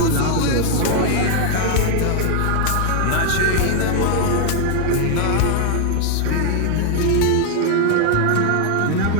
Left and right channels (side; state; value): both; different; correlation 0.00